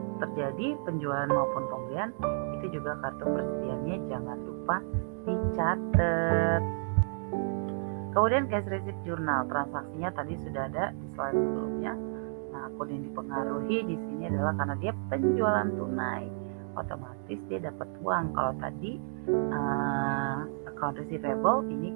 terjadi penjualan maupun pembelian itu juga kartu persediaannya jangan lupa dicatat. Kemudian cash receipt journal, transaksinya tadi sudah ada di slide sebelumnya. Nah, akun yang dipengaruhi di sini adalah karena dia penjualan tunai, otomatis dia dapat uang. Kalau tadi account receivable, ini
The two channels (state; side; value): silent; left; digital silence